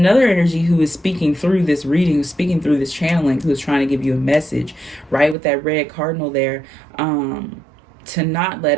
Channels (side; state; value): left; drops out; at 5.4 s